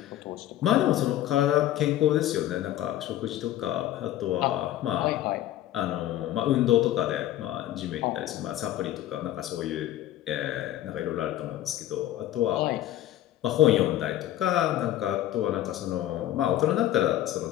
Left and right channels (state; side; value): quieter; right; 13.2 dB